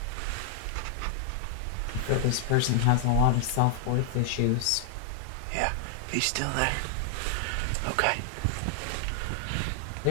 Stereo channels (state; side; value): different; both; correlation 0.00